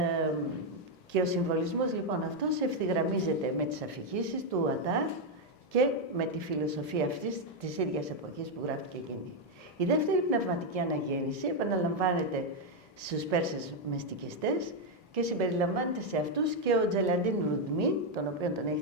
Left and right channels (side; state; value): both; normal; correlation 0.02